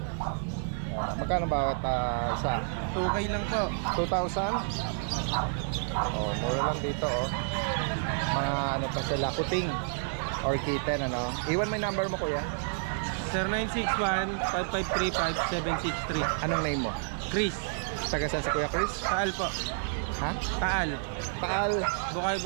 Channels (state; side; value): silent; left; digital silence